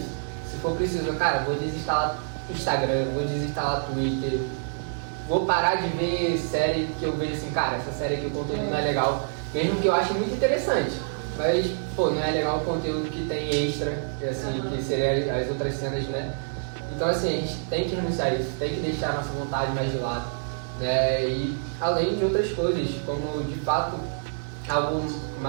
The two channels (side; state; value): left; silent; digital silence